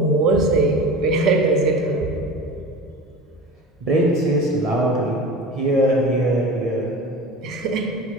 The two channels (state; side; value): normal; both; correlation 0.33